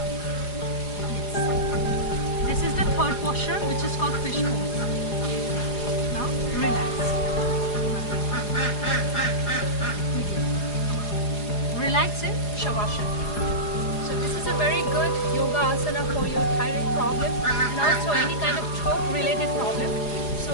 Yes. This is the third posture, which is called fish pose. Now relax. Relax in Shavasana. So this is a very good yoga asana for your thyroid problem and also any kind of throat related problem. So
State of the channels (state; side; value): late; right; 4.8 ms